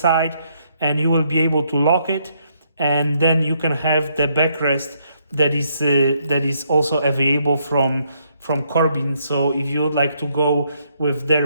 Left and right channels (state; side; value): inverted; both; correlation -0.73